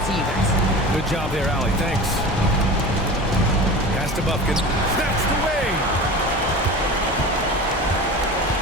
to you guys. Good job there, Allie. Thanks. Pass to Bufkin. That's the way.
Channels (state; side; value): normal; both; correlation 0.34